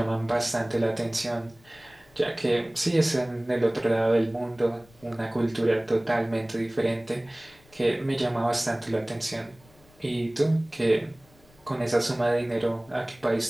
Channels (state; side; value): noise; left; rumble, 28 dB below the sound